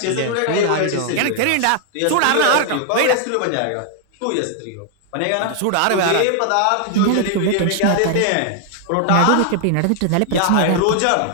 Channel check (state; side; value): different; both; correlation 0.00